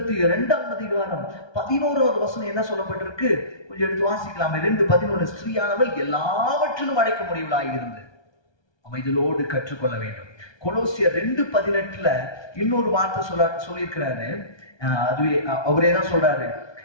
2ஆம் அதிகாரம் 11வது வசனம் என்ன சொல்லப்பட்டிருக்கு? கொஞ்சம் எடுத்து வாசிக்கலாமே. 2:11 ஸ்திரீயானவள் எல்லாவற்றிலும் அடைக்க முடியவளாயிருந்து அமைதலோடு கற்றுக்கொள்ள வேண்டும். கொலோசியர் 2:18 இன்னொரு வார்த்தை சொல்லியிருக்கிறாரு. அதுவே அவரே தான் சொல்றாரு.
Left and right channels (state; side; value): late; right; 1.2 ms